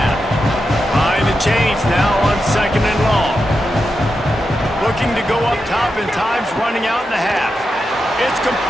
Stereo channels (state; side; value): normal; both; correlation 0.88